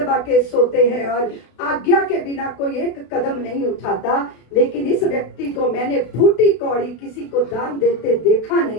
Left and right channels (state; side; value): late; right; 32 ms